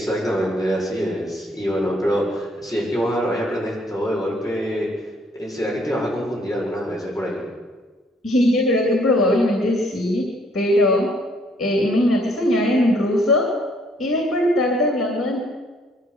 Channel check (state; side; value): normal; both; correlation 0.65